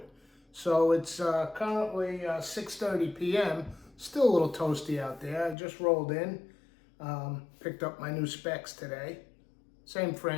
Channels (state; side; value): drops out; right; at 5.6 s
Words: So it's currently 6:30 p.m. Still a little toasty out there. I just rolled in, picked up my new specs today. Same